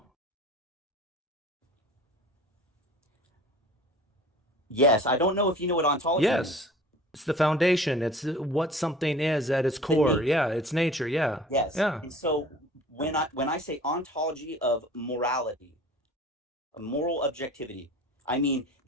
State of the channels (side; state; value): both; normal; correlation 0.44